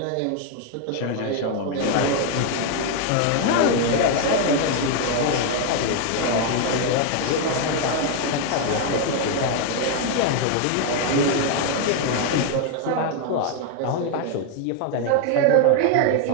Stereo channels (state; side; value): different; both; correlation 0.00